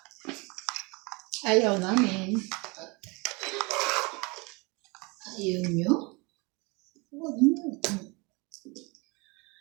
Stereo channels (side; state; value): left; quieter; 27.7 dB